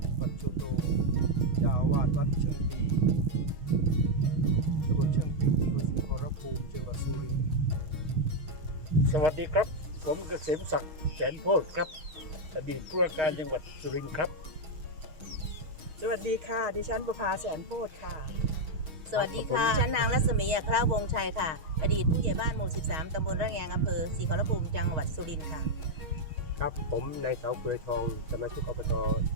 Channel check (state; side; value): late; left; 6.3 ms